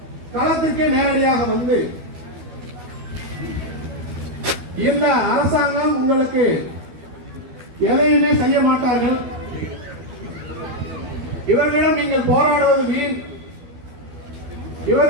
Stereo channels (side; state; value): left; late; 12 ms